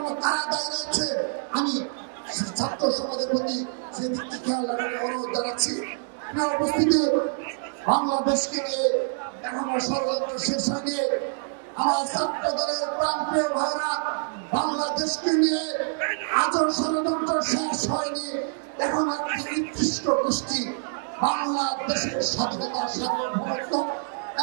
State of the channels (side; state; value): left; silent; digital silence